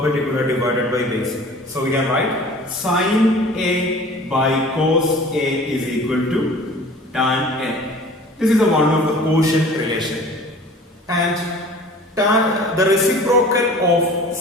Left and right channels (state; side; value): normal; both; correlation 0.45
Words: divided by base. So we can write sin A by cos A is equal to tan A. This is the one of the quotient relation. And the reciprocal of